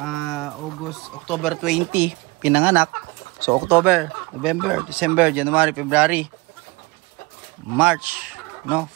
October 20 pinanganak. So October, November, December, January, February, March, no?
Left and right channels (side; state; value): left; quieter; 24.9 dB